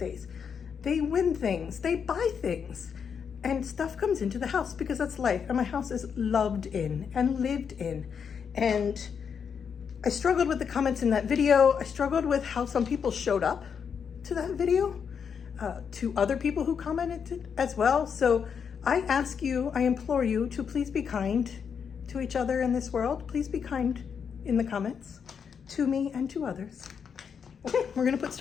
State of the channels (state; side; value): quieter; right; 6.9 dB